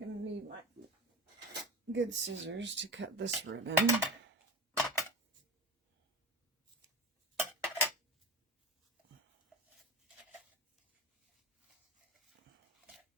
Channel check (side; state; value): both; normal; correlation 0.27